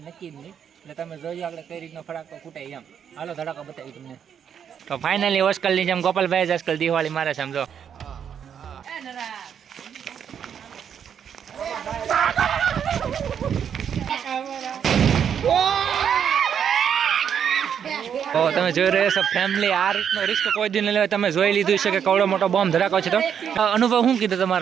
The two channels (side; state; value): left; quieter; 8.2 dB